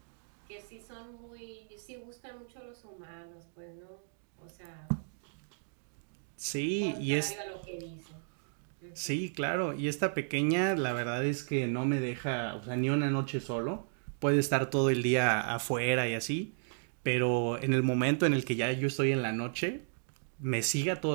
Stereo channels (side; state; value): left; silent; digital silence